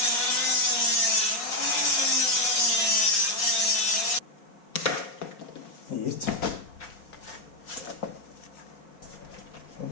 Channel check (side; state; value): right; late; 4.9 ms